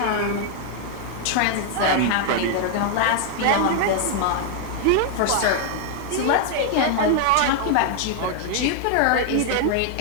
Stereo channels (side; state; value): both; different; correlation 0.00